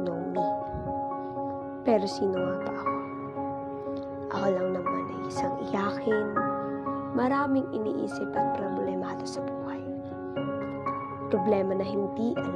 know me. Pero sino nga ba ako? Ako lang naman ay isang iyakin, maraming iniisip at problemado sa buhay. Problema na hindi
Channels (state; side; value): identical; both; correlation 1.00